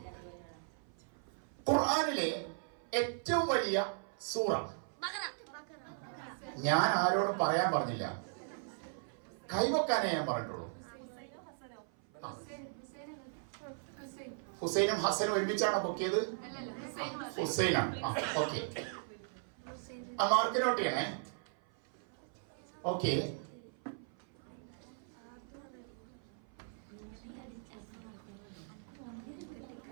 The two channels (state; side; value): silent; left; 53 dB below the other